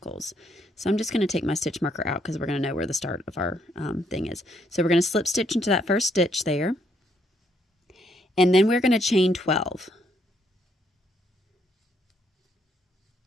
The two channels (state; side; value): normal; both; correlation 0.72